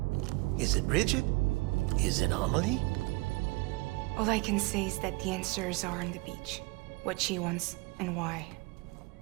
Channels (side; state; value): left; quieter; 24.6 dB